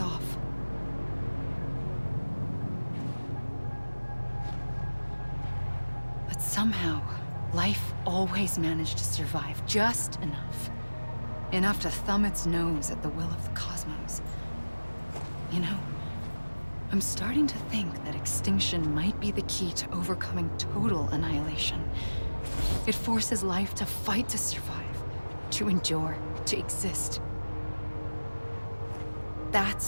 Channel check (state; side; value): inverted; both; correlation -1.00